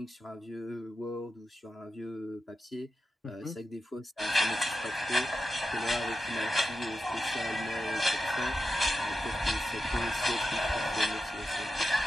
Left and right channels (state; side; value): normal; both; correlation 0.90